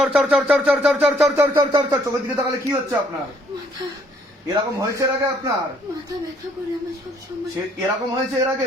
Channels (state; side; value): normal; both; correlation 0.65